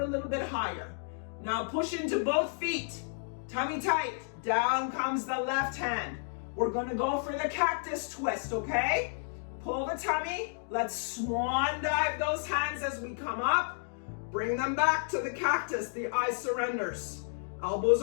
a little bit higher. Now push into both feet. Tummy tight. Down comes the left hand. We're gonna go for the cactus twist, okay? Pull the tummy. Let's swan dive those hands as we come up. Bring them back to the cactus. The eye surrenders. Elbows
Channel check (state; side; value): silent; right; digital silence